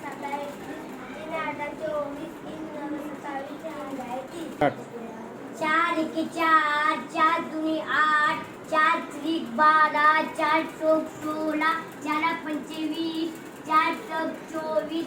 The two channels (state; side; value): identical; both; correlation 1.00